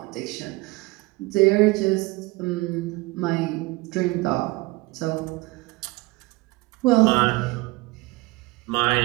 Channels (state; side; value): quieter; left; 22.7 dB